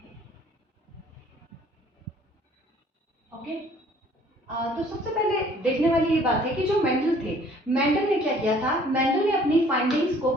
Okay? तो सबसे पहले देखने वाली ये बात है कि जो मेंडल थे, मेंडल ने क्या किया था? मेंडल ने अपनी फाइंडिंग्स को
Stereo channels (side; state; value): both; normal; correlation 0.57